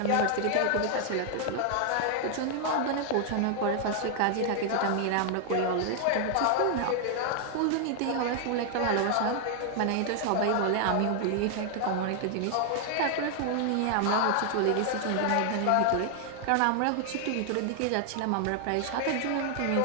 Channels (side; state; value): both; different; correlation 0.00